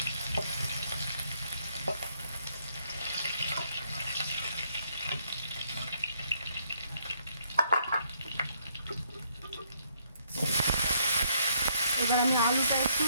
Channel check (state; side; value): inverted; both; correlation -0.70